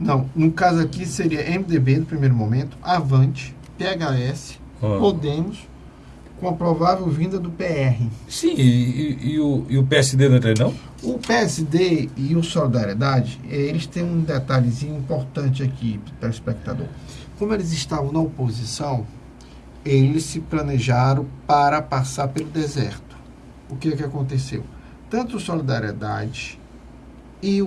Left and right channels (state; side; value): identical; both; correlation 1.00